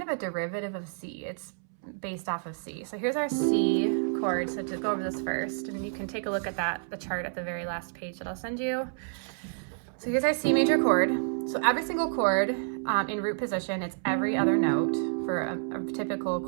of a derivative of C. It's based off of C. So here's our C chord. So to go over this first, and you can take a look at the chart at the very last page that I'll send you. So here's our C major chord. So every single chord in root position, it's every other note for a typical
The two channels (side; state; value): left; silent; 58 dB below the other